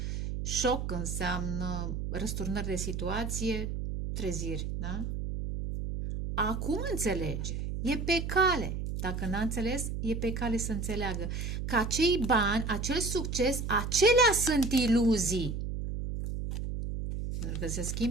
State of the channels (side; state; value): right; noise; hum, 4 dB below the sound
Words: șoc, înseamnă răsturnări de situație, treziri, da? Acum înțelege, e pe cale. Dacă n-a înțeles, e pe cale să înțeleagă că acei bani, acel succes, acelea sunt iluzii. Pentru că se